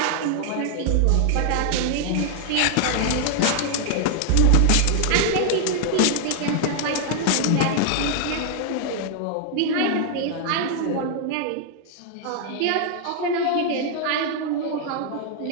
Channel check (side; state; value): both; different; correlation 0.00